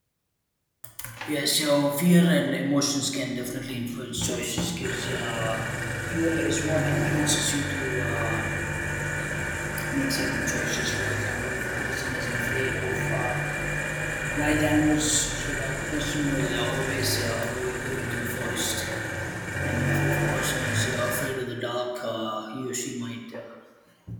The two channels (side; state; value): both; identical; correlation 1.00